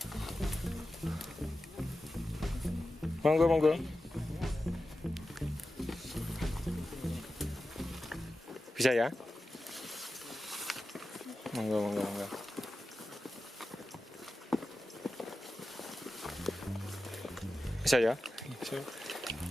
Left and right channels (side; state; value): both; normal; correlation 0.93